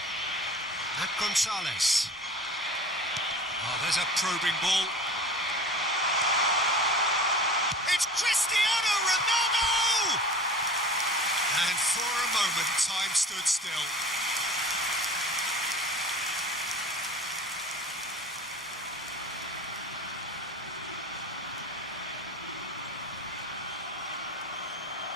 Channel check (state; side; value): normal; both; correlation 0.39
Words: And Gonzalez. Oh, there's a probing ball. It's Cristiano Ronaldo! And for a moment, time stood still.